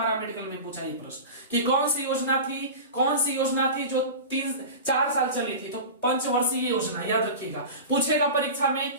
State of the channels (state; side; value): inverted; both; correlation -0.30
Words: में पूछा ये प्रश्न कि कौन सी योजना थी जो 3-4 साल चली थी, तो पंचवर्षीय योजना, याद रखिएगा। पूछेगा परीक्षा में